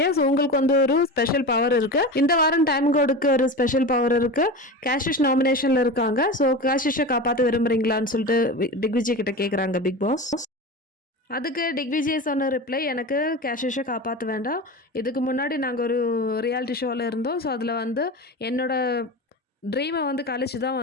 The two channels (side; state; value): both; normal; correlation 0.27